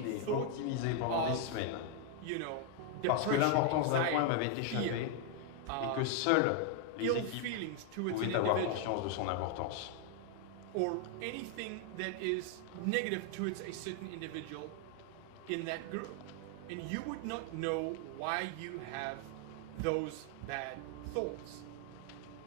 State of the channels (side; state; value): both; different; correlation 0.00